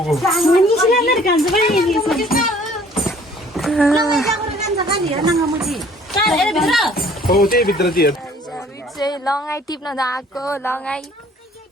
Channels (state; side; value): normal; both; correlation 0.56